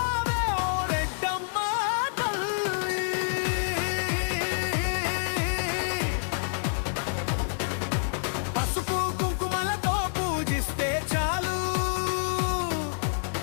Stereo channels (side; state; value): right; silent; digital silence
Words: ఓ రెడ్డమ్మ తల్లి. పసుపు కుంకుమలతో పూజిస్తే చాలు,